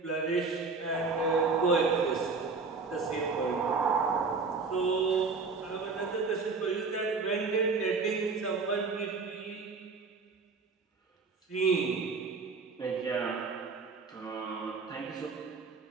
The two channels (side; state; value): left; quieter; 4.4 dB